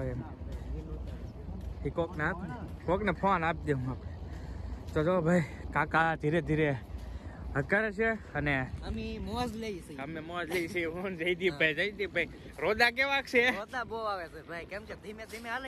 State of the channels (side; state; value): both; identical; correlation 1.00